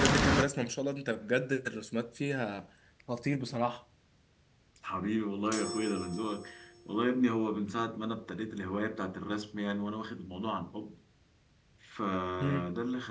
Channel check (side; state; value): both; identical; correlation 1.00